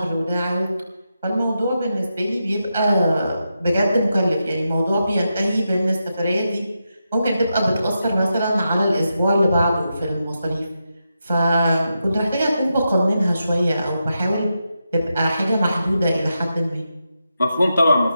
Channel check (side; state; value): both; inverted; correlation -0.87